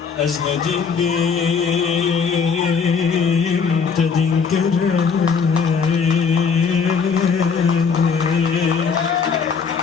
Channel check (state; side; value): quieter; right; 5.7 dB